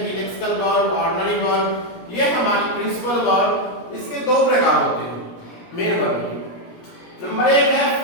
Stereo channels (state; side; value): late; right; 17 ms